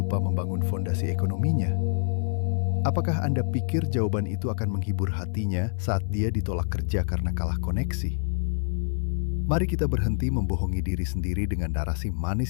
membangun fondasi ekonominya? Apakah Anda pikir jawaban itu akan menghibur hatinya saat dia ditolak kerja karena kalah koneksi? Mari kita berhenti membohongi diri sendiri dengan narasi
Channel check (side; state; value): right; silent; digital silence